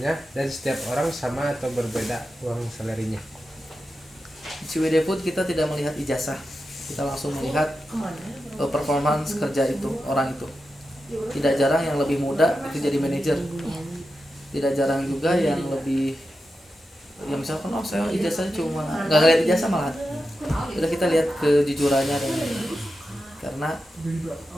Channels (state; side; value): normal; both; correlation 0.90